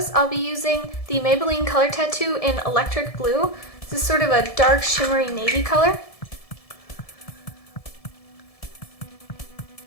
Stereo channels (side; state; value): right; late; 1.7 ms